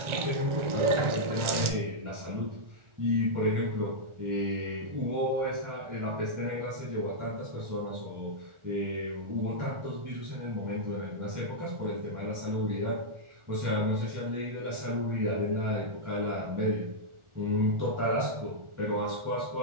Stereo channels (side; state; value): left; late; 1.4 ms